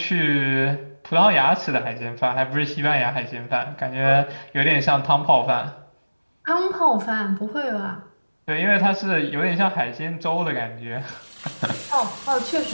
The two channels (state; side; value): inverted; both; correlation -1.00